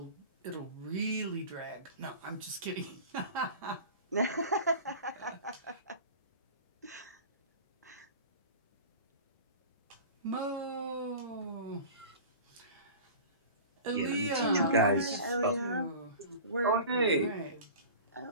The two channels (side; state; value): both; inverted; correlation -0.37